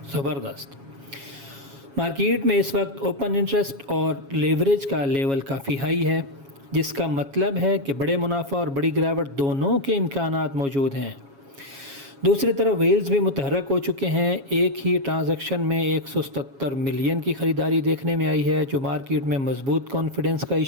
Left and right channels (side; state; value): left; late; 7.3 ms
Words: زبردست۔ مارکیٹ میں اس وقت اوپن انٹرسٹ اور لیوریج کا لیول کافی ہائی ہے، جس کا مطلب ہے کہ بڑے منافع اور بڑی گراوٹ دونوں کے امکانات موجود ہیں۔ دوسری طرف ویلز بھی متحرک ہو چکے ہیں۔ ایک ہی ٹرانزیکشن میں 177 ملین کی خریداری دیکھنے میں آئی ہے، جو مارکیٹ میں مضبوط کانفیڈنس کا